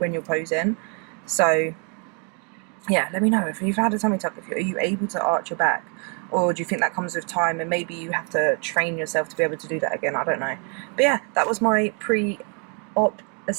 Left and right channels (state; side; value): quieter; left; 34.8 dB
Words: you're posing. So yeah, let me know if you've had a tummy tuck. Are you able to arch your back, or do you think that comes with time and maybe you have to train yourself to be able to do that again? I don't know. But yeah, that was my pre-op